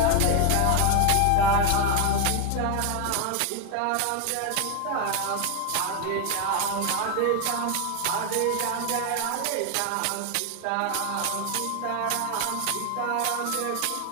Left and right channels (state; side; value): different; both; correlation 0.01